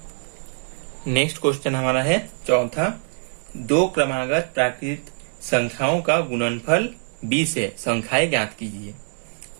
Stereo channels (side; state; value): left; silent; digital silence